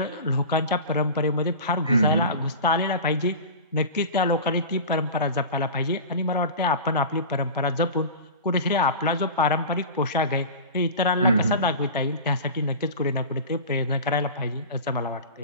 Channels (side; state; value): both; inverted; correlation -0.32